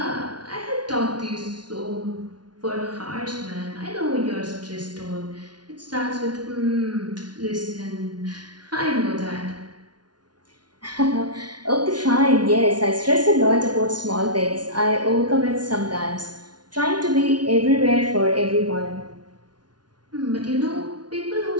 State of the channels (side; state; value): left; late; 0.70 ms